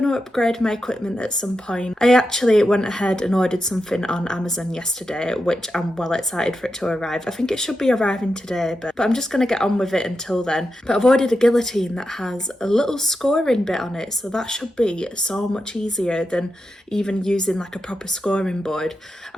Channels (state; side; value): normal; both; correlation 0.88